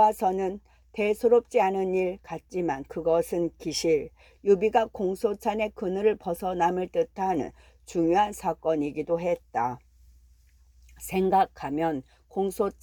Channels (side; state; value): both; identical; correlation 1.00